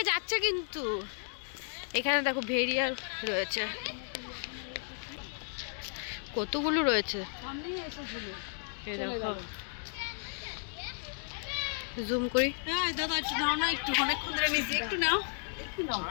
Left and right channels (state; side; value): silent; right; 55 dB below the other